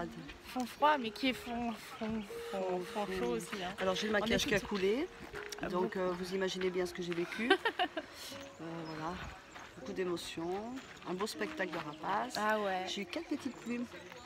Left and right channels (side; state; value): both; identical; correlation 1.00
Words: froid, mais qui est fond chaud aussi. Hein. Alors j'ai le maquillage qui a coulé, donc vous imaginez bien ce que j'ai vécu. Voilà, beaucoup d'émotions, un beau spectacle de rapaces. Ah ouais. J'ai eu 4 petites plumes.